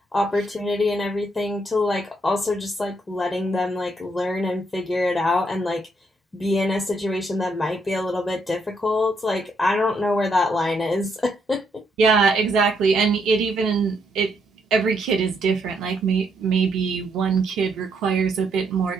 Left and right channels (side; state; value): both; normal; correlation 0.75